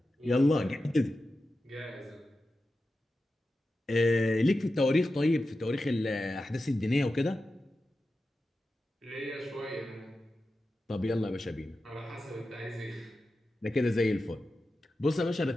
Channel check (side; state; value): both; normal; correlation 0.92